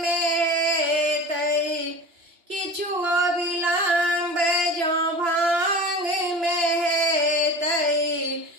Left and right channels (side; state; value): left; late; 2.9 ms